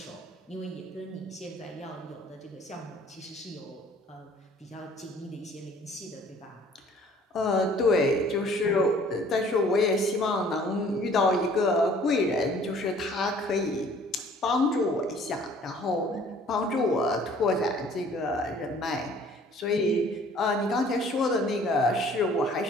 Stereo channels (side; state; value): both; normal; correlation 0.55